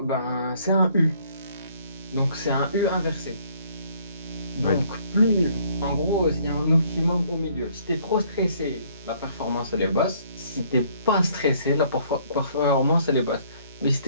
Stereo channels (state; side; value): inverted; both; correlation -0.62